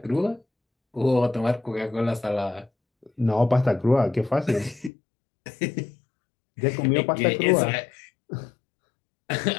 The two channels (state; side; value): drops out; right; at 4.9 s